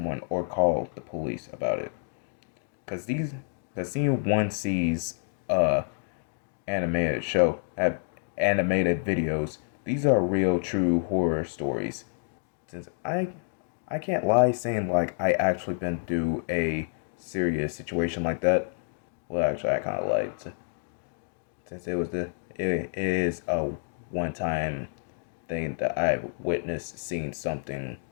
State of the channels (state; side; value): silent; right; digital silence